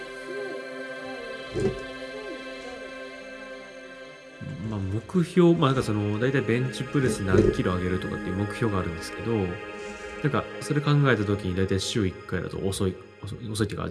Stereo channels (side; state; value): both; identical; correlation 1.00